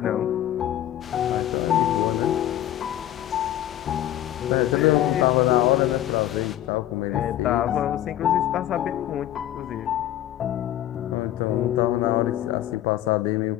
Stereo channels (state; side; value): quieter; right; 12.5 dB